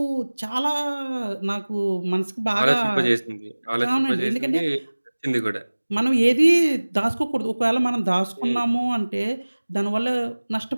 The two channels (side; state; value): both; inverted; correlation -1.00